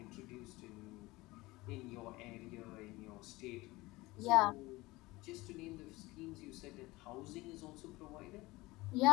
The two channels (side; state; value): right; quieter; 20.7 dB